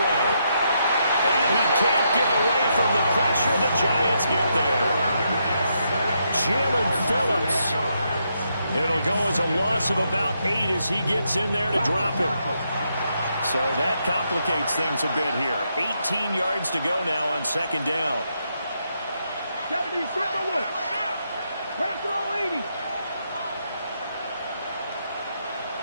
And he can't get away from the pressure. The Giants get there. Jalen Phillips. It'll go as a loss of about 8 as he gets in there to drop him. So that complicates things a bit here. 18 yards to go now on 2nd down. 70, Bravo 80.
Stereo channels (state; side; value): inverted; both; correlation -0.79